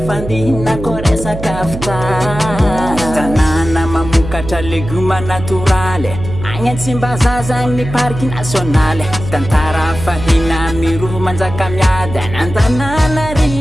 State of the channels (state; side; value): noise; right; hum, 8 dB below the sound